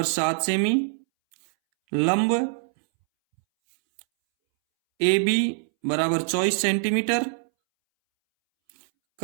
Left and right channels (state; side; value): silent; left; 63 dB below the other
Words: 7 सेमी, लंब ए बी बराबर 24 सेंटीमीटर,